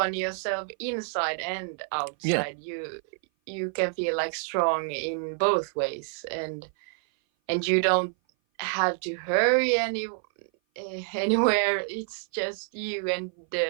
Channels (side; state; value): left; silent; 57 dB below the other